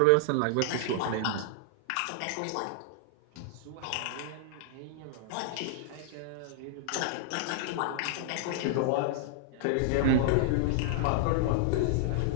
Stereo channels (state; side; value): different; both; correlation -0.01